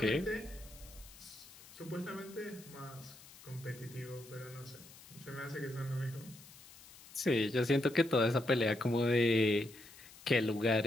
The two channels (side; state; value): left; noise; hiss, 20 dB below the sound